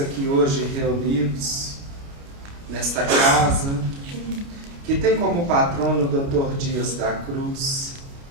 hoje reunidos nesta casa, que tem como patrono o Dr. Dias da Cruz,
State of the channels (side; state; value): left; late; 29 ms